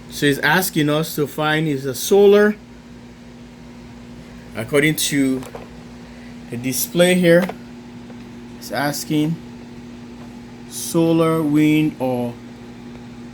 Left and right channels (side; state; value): both; identical; correlation 1.00